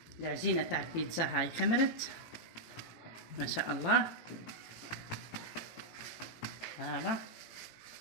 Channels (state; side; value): late; right; 18 ms